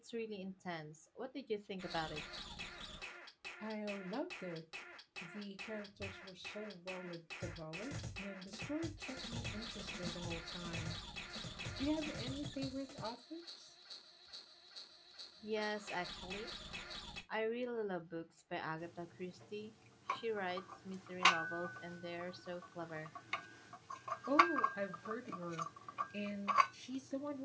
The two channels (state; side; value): identical; both; correlation 1.00